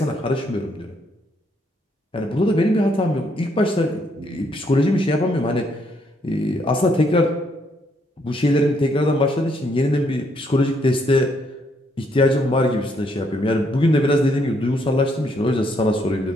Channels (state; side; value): normal; both; correlation 0.72